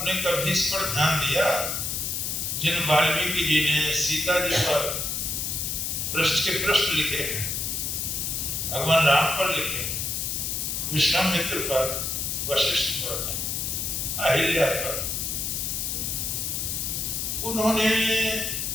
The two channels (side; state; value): left; noise; hiss, 1 dB below the sound